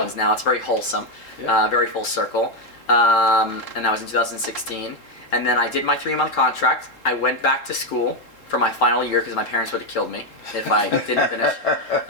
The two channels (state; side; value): late; right; 3.7 ms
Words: now. It's very wholesome, very full circle. And that was in 2016. And then I did my 3-month contract. I went back to school for my final year because my parents would have killed me if I didn't finish.